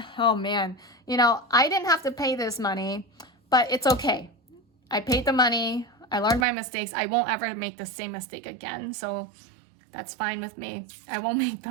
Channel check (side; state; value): left; drops out; at 6.5 s